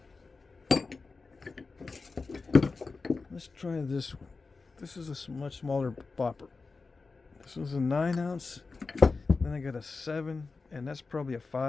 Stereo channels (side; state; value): right; quieter; 4.2 dB